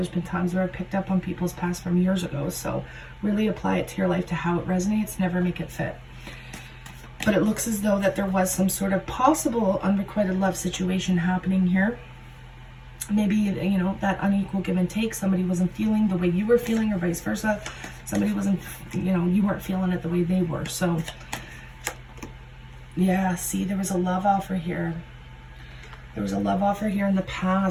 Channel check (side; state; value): both; identical; correlation 1.00